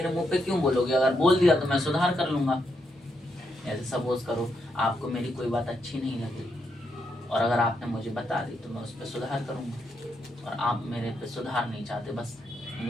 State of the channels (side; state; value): both; normal; correlation 0.80